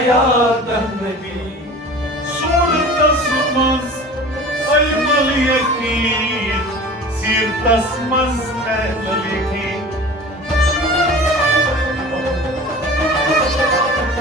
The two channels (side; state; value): both; normal; correlation 0.39